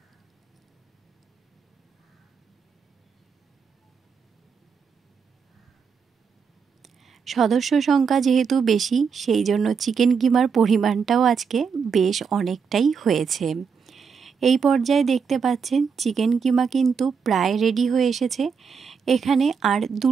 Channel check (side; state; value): left; quieter; 6.1 dB